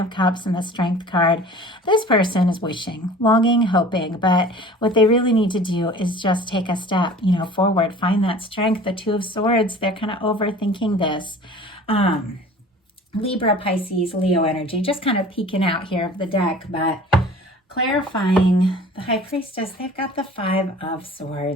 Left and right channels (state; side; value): normal; both; correlation 0.44